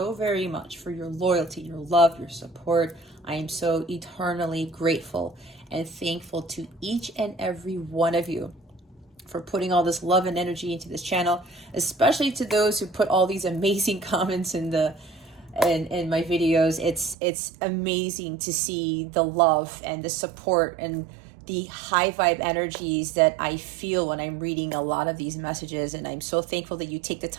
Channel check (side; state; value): left; drops out; at 17.2 s